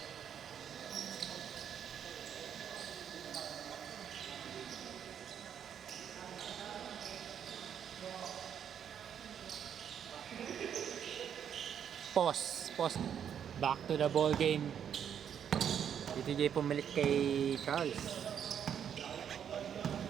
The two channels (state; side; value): quieter; left; 8.6 dB